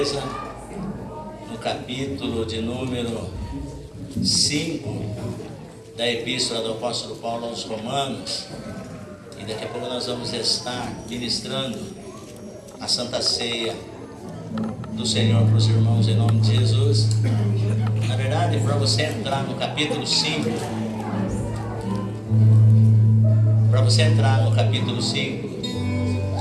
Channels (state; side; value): identical; both; correlation 1.00